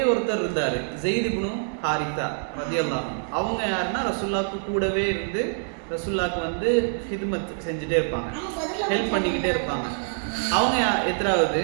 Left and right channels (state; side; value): silent; left; digital silence